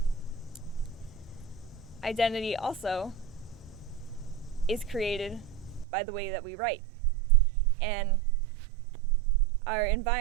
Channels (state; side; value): drops out; left; at 5.9 s